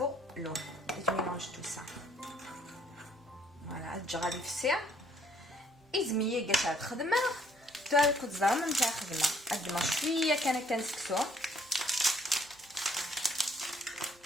l'eau. Et je mélange tout ça. Voilà, تجي في الساعه إزمية قاعدة تخدمها تاكل الزرم نتاع خدمة قدما شوية كان كنسكسو.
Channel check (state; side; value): normal; both; correlation 0.64